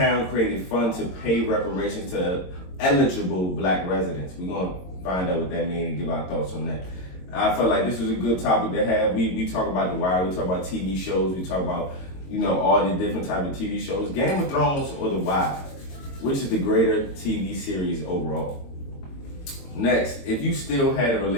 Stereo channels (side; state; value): right; late; 22 ms